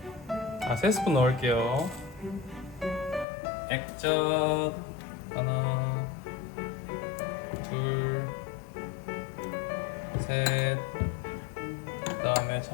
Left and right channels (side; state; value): right; drops out; at 3.2 s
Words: 3스푼 넣을게요. 액젓 하나, 둘, 셋. 그 다음에